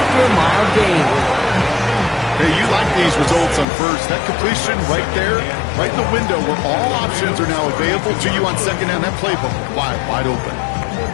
a mild gain. Hey, you like these results on first. That completion right there, right in the window where all options are now available to you on 2nd down. That playbook wide open.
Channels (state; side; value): drops out; right; at 3.7 s